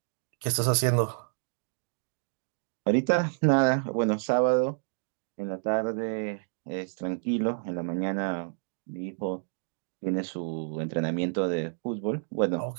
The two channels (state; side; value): silent; left; digital silence